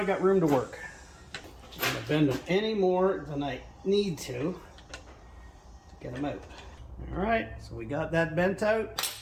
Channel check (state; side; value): identical; both; correlation 1.00